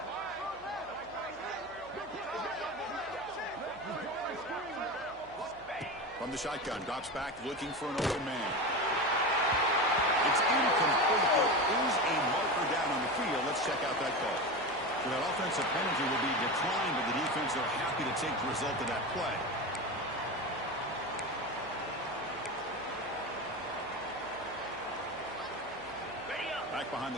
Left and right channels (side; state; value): right; noise; hum, 24 dB below the sound